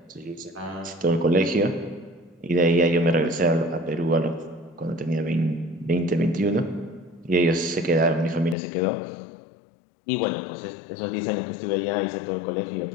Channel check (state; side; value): drops out; right; at 8.6 s